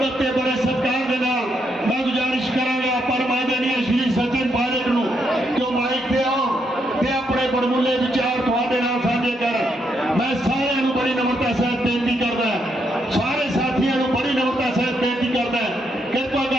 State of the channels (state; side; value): normal; both; correlation 0.78